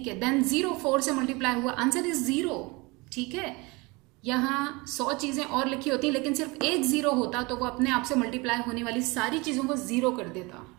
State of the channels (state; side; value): quieter; left; 25.5 dB